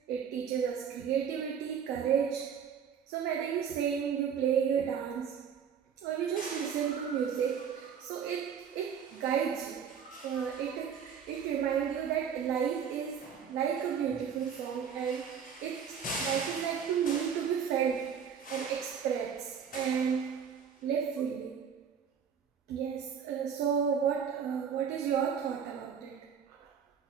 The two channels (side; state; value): left; quieter; 7.5 dB